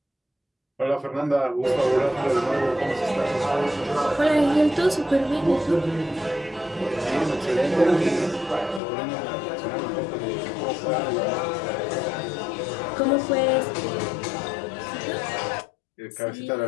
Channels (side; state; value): right; drops out; at 8.8 s